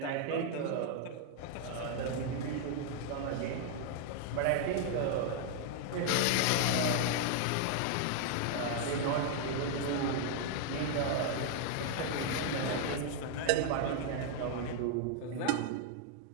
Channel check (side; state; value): both; different; correlation 0.00